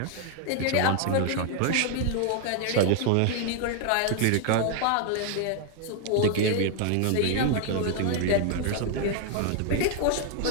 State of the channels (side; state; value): both; different; correlation 0.00